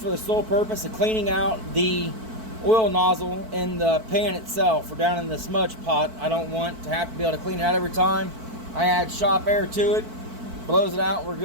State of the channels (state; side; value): late; left; 4.5 ms